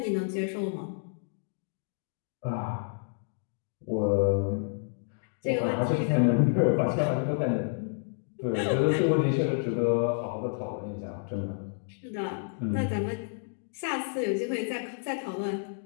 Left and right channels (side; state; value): right; silent; digital silence